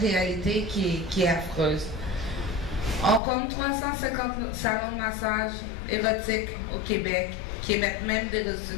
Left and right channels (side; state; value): right; drops out; at 3.2 s